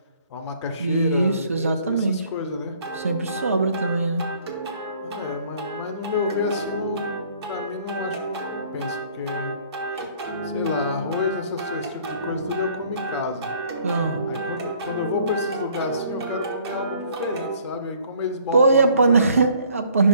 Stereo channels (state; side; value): inverted; both; correlation -0.59